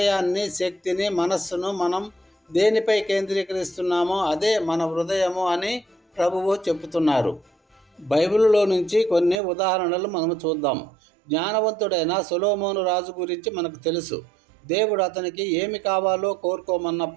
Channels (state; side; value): drops out; left; at 9.3 s